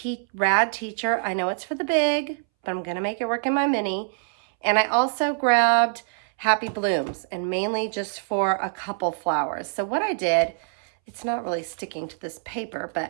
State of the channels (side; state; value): left; silent; 62 dB below the other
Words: rad teacher. I know it's for the big, but I'm going to make it work in my mini. And I also grabbed Happy Blooms, and mainly just for a couple flowers. So what I did, it's not really sticking to this paper,